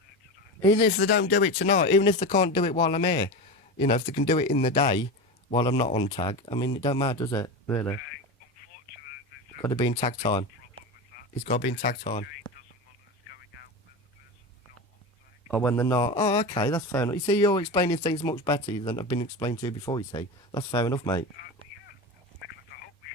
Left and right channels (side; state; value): both; normal; correlation 0.23